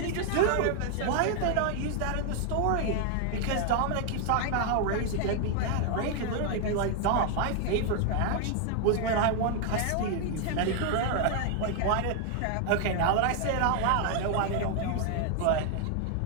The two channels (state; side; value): different; both; correlation 0.00